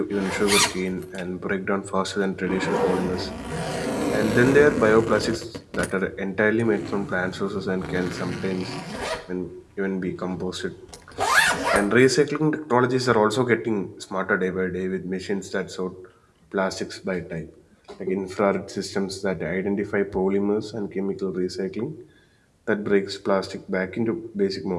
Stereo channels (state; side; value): identical; both; correlation 1.00